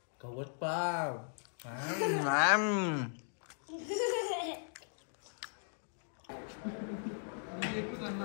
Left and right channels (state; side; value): silent; right; digital silence